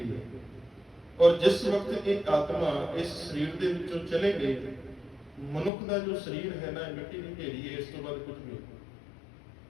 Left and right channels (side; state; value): right; drops out; at 5.7 s